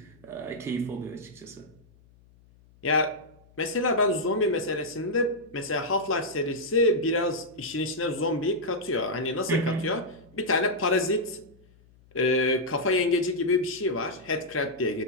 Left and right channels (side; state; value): left; noise; hum, 28 dB below the sound